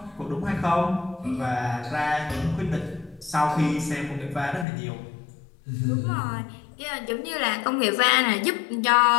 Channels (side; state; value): right; drops out; at 4.7 s